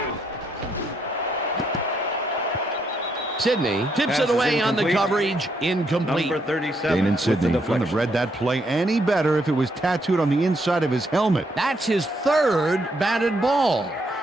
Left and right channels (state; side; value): normal; both; correlation 0.75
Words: Sidney tips it away on the coverage. Incomplete. Number 37. Dane and Sidney wouldn't have read that play any better if it was tattooed on the inside of his helmet. That's his third batted ball,